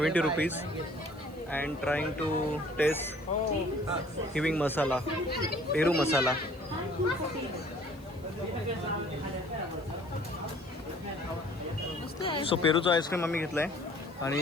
rupees and trying to taste giving masala, peru masala। So पेरूचा आईस्क्रीम आम्ही घेतला आहे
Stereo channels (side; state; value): left; noise; hiss, 28 dB below the sound